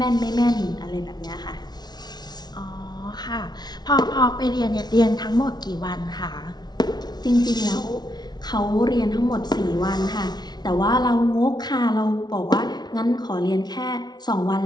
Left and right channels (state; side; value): late; right; 0.19 ms